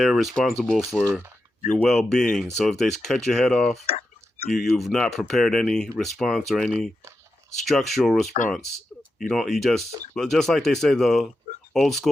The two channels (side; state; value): both; normal; correlation 0.88